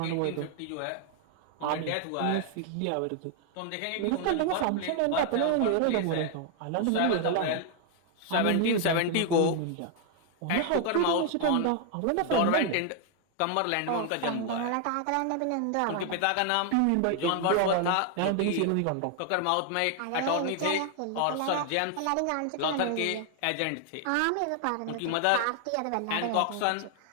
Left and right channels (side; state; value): both; different; correlation 0.00